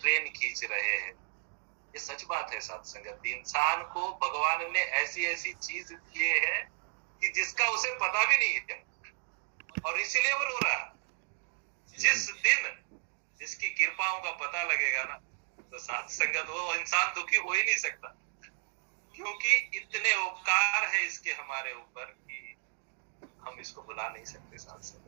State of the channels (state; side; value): silent; left; digital silence